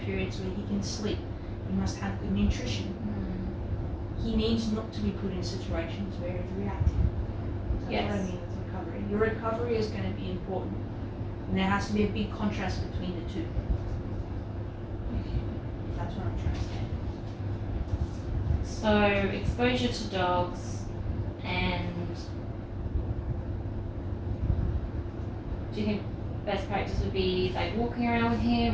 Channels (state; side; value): identical; both; correlation 1.00